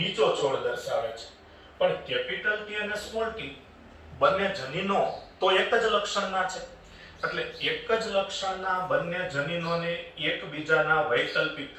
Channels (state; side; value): identical; both; correlation 1.00